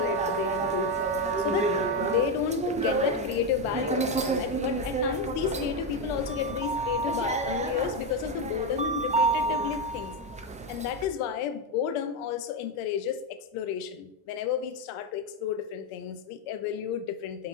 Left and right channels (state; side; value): normal; both; correlation 0.08